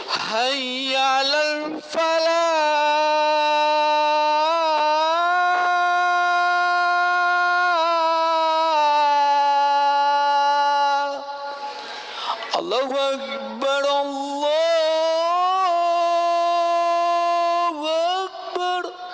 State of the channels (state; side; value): identical; both; correlation 1.00